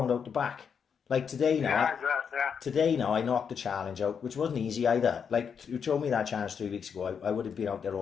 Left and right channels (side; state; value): right; quieter; 6.8 dB